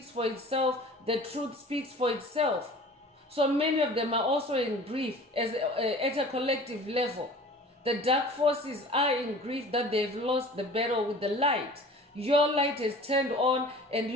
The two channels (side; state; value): both; normal; correlation 0.44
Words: for itself, the truth speaks for itself. So many of them are also in grief at a collective level. The dark forces are in grief that they've lost the battle with the light. Your light is turned on and